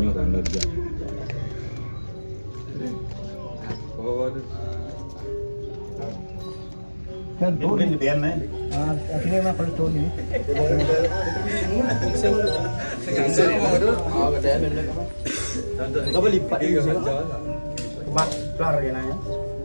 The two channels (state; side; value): inverted; both; correlation -1.00